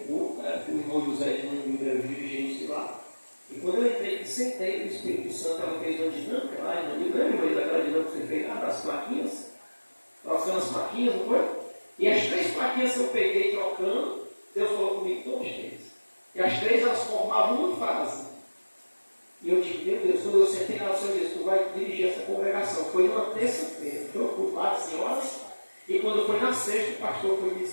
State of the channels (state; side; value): inverted; both; correlation -1.00